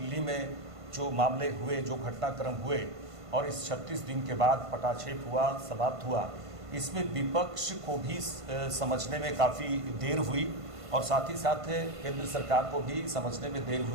में जो मामले हुए, जो घटनाक्रम हुए और इस 36 दिन के बाद पटाक्षेप हुआ, समाप्त हुआ, इसमें विपक्ष को भी समझने में काफ़ी देर हुई और साथ ही साथ केंद्र सरकार को भी समझने में देर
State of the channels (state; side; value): late; left; 1.5 ms